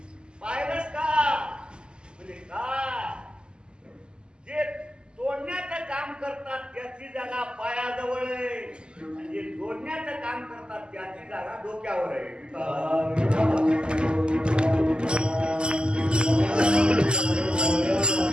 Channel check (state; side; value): late; left; 0.048 ms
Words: पाहिलंस का. म्हणजे काय, जे तोडण्याचं काम करतात त्याची जागा पायाजवळ आहे आणि जे जोडण्याचं काम करतात त्याची जागा डोक्यावर आहे.